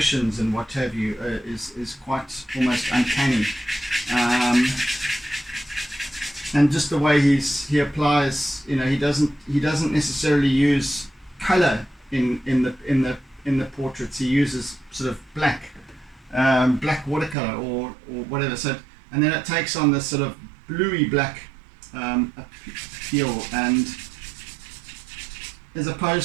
and what have you is quite almost uncanny. And just the way he applies, he doesn't necessarily use color in the portraits. He uses sort of black watercolor or whatever. So, and then it takes on this sort of bluey black appeal, and as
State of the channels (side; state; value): left; drops out; at 17.4 s